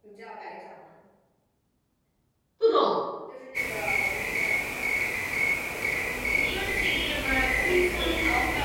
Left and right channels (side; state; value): both; identical; correlation 1.00